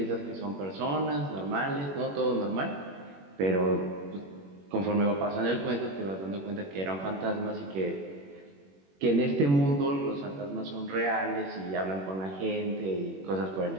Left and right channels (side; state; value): left; late; 21 ms